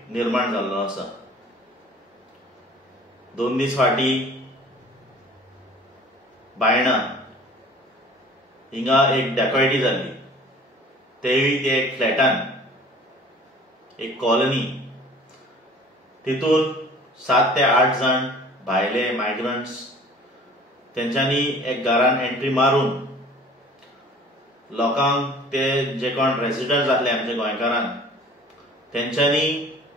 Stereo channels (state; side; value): normal; both; correlation 0.48